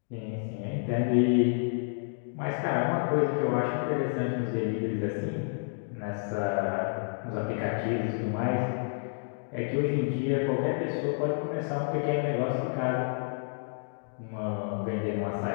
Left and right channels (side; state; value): right; silent; digital silence